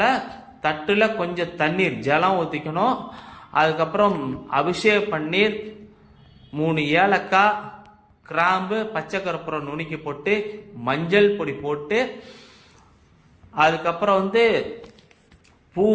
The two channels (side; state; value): both; identical; correlation 1.00